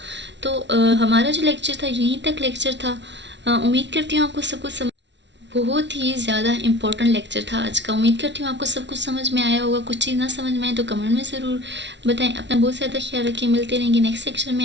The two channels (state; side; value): late; left; 0.51 ms